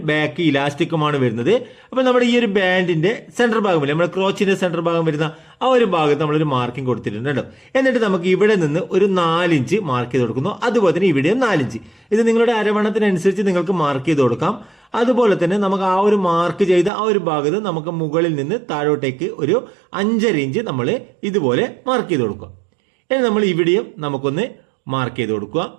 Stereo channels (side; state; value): left; drops out; at 16.9 s